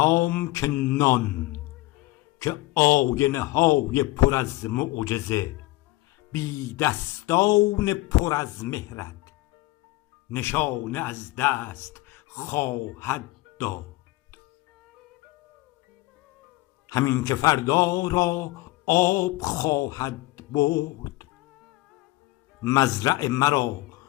که نان، که آینه های پر از معجزه، بی دستان پر از مهرت نشانه از دست خواهد داد. همین که فردا را آب خواهد برد، مزرع مرا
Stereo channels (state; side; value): quieter; right; 19.7 dB